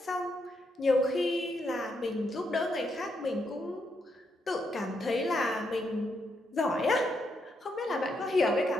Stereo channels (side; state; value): both; normal; correlation 0.79